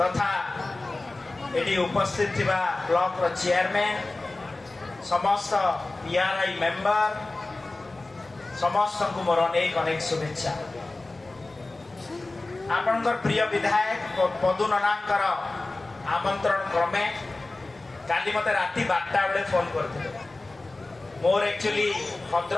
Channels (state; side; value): quieter; right; 3.1 dB